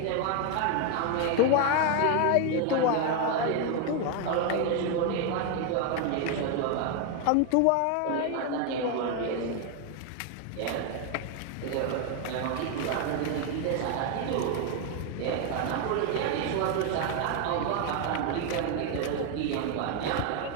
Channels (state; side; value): different; both; correlation 0.01